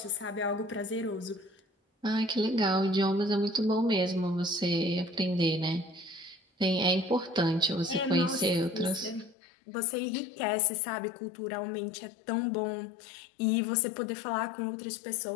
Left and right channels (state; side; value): drops out; right; at 9.3 s